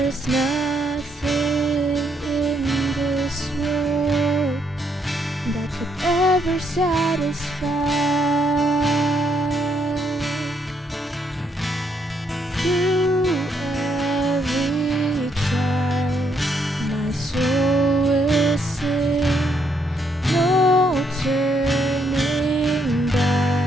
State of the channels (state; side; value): normal; both; correlation 0.73